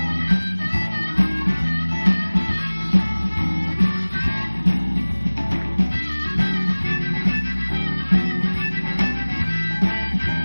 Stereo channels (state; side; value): inverted; both; correlation -1.00